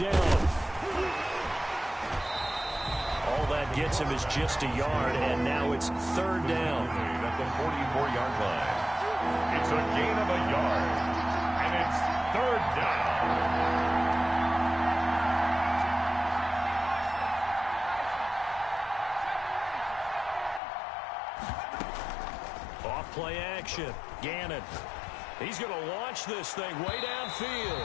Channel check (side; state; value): right; drops out; at 20.6 s